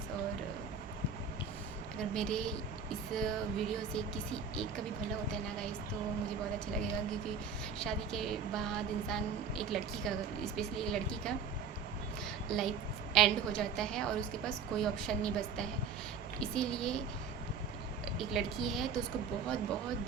और अगर मेरे इस वीडियो से किसी एक का भी भला होता है ना गाइस, तो मुझे बहुत अच्छा लगेगा, क्योंकि शादी के बाद इंसान, एक लड़की का, स्पेशली एक लड़की का लाइफ एंड हो जाता है, और उसके पास कोई ऑप्शन नहीं बचता है। इसीलिए एक लड़की है तो उसको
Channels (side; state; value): left; quieter; 5.8 dB